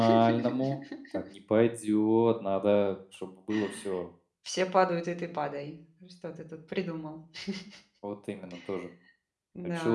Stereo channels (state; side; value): identical; both; correlation 1.00